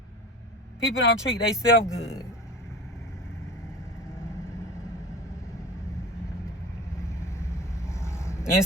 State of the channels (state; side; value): normal; both; correlation 0.35